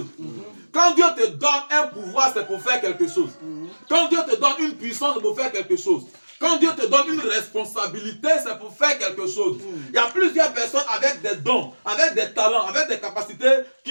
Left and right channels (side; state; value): both; inverted; correlation -1.00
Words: Quand Dieu te donne un pouvoir, c'est pour faire quelque chose. Quand Dieu te donne une puissance, c'est pour faire quelque chose. Quand Dieu te donne une responsabilité, c'est pour faire quelque chose. Il y a plusieurs personnes avec des dons, avec des talents, avec des capacités